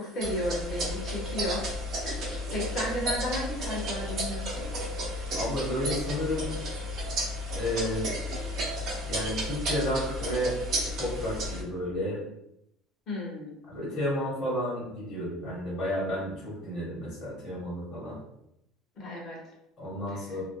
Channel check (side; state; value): both; normal; correlation 0.47